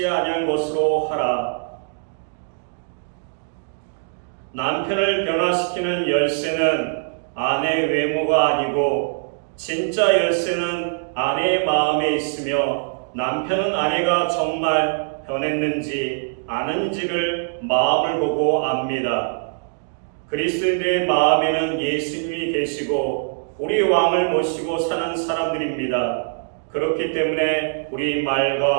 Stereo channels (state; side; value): silent; left; digital silence